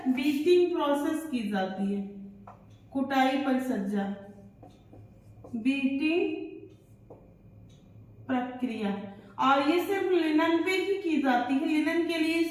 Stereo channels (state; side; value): identical; both; correlation 1.00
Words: बीटिंग प्रोसेस की जाती है, कुटाई परिसज्जा, बीटिंग प्रक्रिया। और ये सिर्फ लिनन पे ही की जाती है, लिनन के लिए